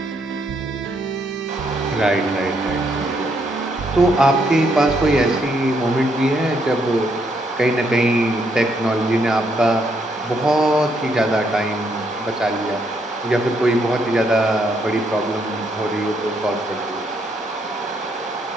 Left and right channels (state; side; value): normal; both; correlation 0.74